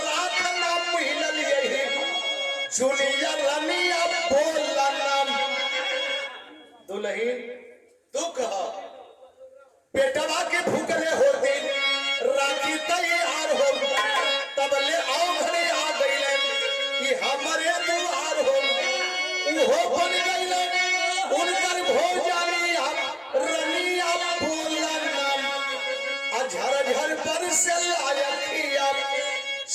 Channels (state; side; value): identical; both; correlation 1.00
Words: नाम मिलल यही जुलिया रनिया बोला नाम। दुल्हन दुख पेटवा के भूखले होते राखी तैयार हो, तब ले आओ घरे आ गई कि हमारे दुआर हो, वो बन गई उनकर भोजानी रनिया बोला नाम। झरझर पर से लायकिया